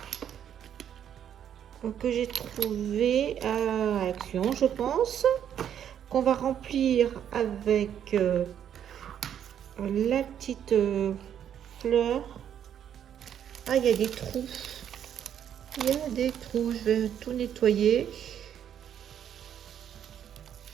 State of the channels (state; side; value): quieter; left; 9.4 dB